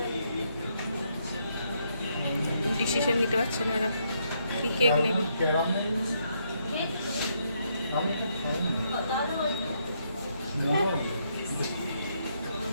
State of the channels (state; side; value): inverted; both; correlation -0.75